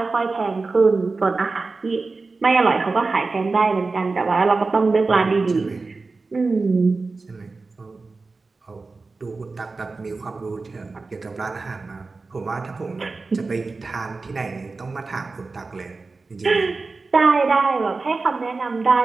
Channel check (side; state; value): left; quieter; 3.9 dB